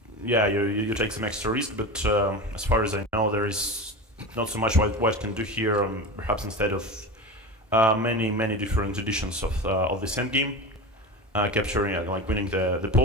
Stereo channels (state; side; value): normal; both; correlation 0.27